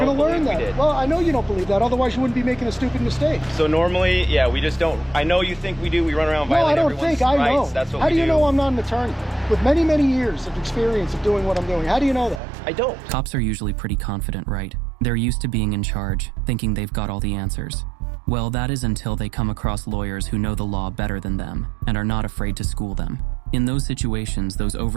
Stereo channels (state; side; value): drops out; left; at 12.4 s